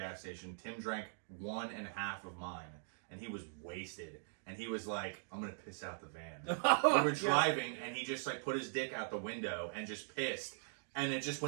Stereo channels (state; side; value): silent; left; digital silence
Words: station. Tim drank 1.5 of mine, and he was wasted. And he was like, I'm gonna piss out the van. We were driving, and he just like put his dick out the window and just pissed. And it just